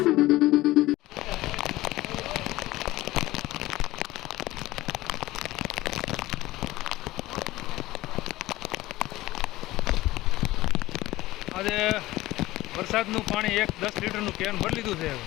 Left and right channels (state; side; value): quieter; right; 17.6 dB